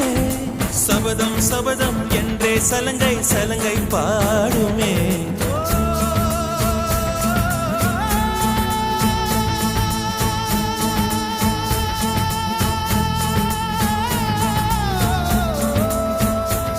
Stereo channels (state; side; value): identical; both; correlation 1.00